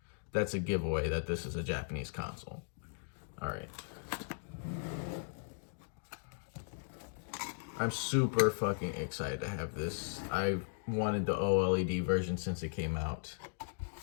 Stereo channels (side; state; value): right; silent; digital silence